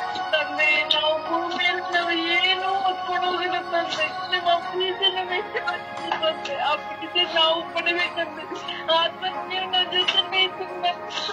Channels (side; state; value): both; identical; correlation 1.00